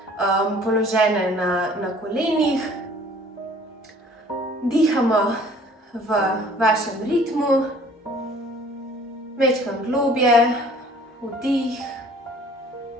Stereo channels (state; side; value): normal; both; correlation 0.53